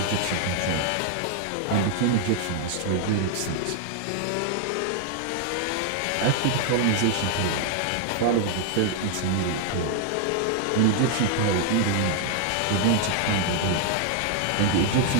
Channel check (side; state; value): both; different; correlation 0.00